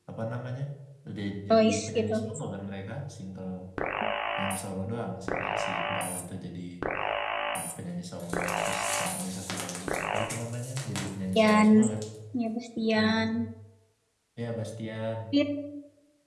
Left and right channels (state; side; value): identical; both; correlation 1.00